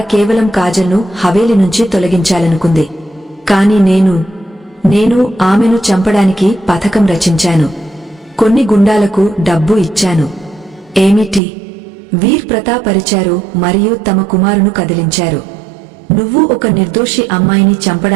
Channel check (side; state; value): left; drops out; at 11.4 s